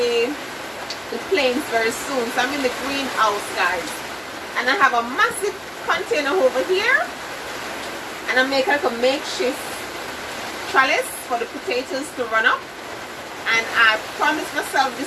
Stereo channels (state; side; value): identical; both; correlation 1.00